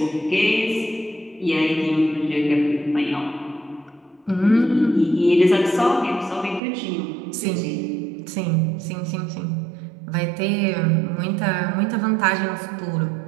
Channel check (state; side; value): drops out; left; at 6.6 s